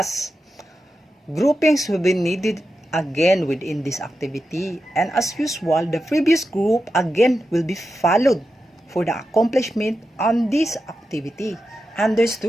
Groupings will be needed again within this activity. And as usual, the previous group again will be followed for the accomplishment on this activity.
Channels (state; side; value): normal; both; correlation 0.89